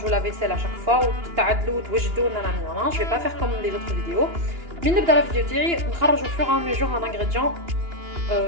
لا فيسيل اشاك فوا وتعدلوا وتوجدوا نانا. جو في با فير كوم لي زوتر فيديو. من نبدا لا فيديو تاعي نخرجوا فور ان ميجور ان انغريديون.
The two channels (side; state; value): left; late; 2.9 ms